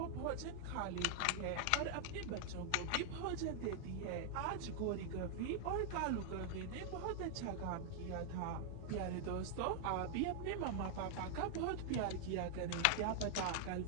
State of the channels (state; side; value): different; both; correlation 0.00